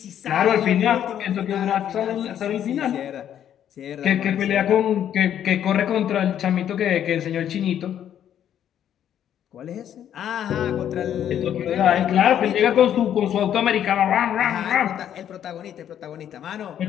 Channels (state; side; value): quieter; right; 10.1 dB